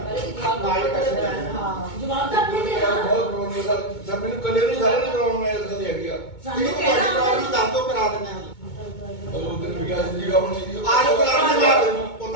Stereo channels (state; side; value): late; right; 2.2 ms